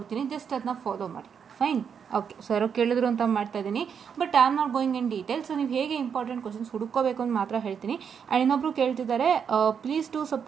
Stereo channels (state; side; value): quieter; left; 7.1 dB